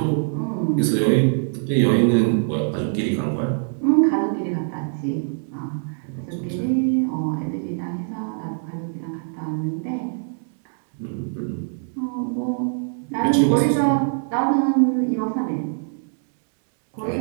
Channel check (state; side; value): silent; left; digital silence